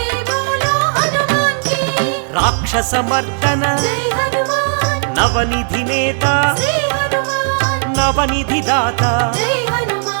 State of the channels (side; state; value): left; silent; 69 dB below the other